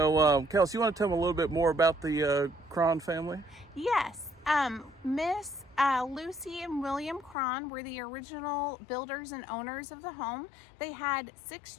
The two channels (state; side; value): drops out; right; at 7.4 s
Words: Kelsey, you want to tell me a little bit more about the Cron family? Yes. Miss Lucy and William Cron were the original builders and owners of the home. They had 6